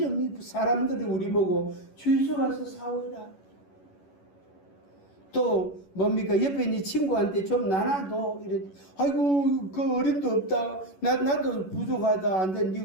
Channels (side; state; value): right; late; 11 ms